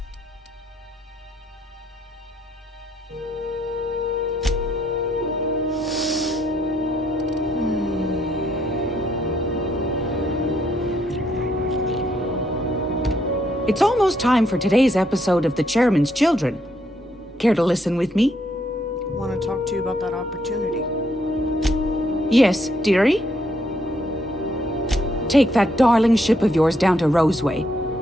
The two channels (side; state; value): both; normal; correlation 0.73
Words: It's almost time for today's episode of The Chairman's Children. Care to listen with me? Want to talk to you about that opportunity. Yes, dearie? Take that darling ship of yours down to Roseway,